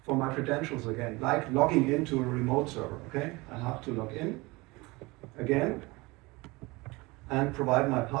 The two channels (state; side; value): quieter; left; 23.5 dB